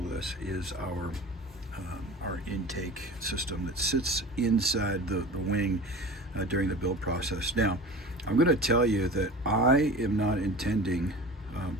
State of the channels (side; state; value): both; normal; correlation 0.36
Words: this is our intake system that sits inside the wing during the build process. Now, I'm going to tell you that I am not intending